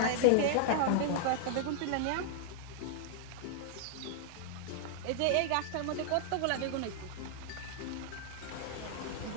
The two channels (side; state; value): both; different; correlation -0.01